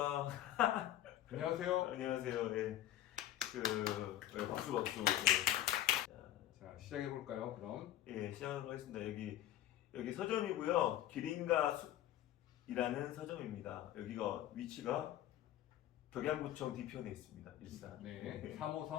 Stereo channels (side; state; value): right; quieter; 13.0 dB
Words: 안녕하세요. 안녕하세요. 네, 박수 박수. 자, 시작해 볼까요? 그럼. 예, 시작하도록 하겠습니다. 여기 서점이고요. 기린과 숲이라는 서점입니다. 여기가 위치가 덕양구청 뒤편에 있습니다. 일산. 네,